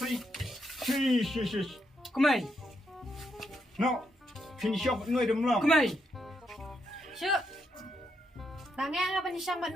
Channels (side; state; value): both; normal; correlation 0.79